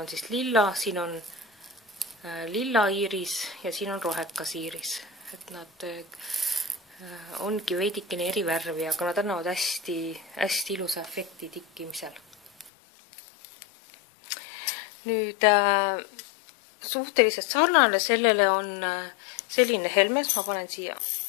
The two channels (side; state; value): right; drops out; at 12.7 s